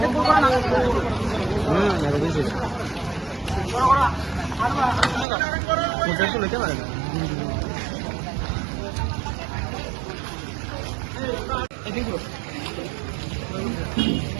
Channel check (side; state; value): left; drops out; at 5.2 s